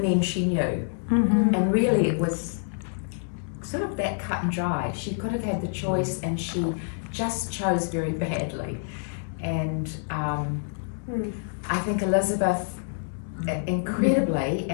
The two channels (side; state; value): right; silent; digital silence